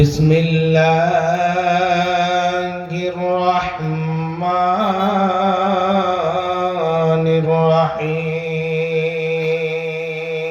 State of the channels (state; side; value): identical; both; correlation 1.00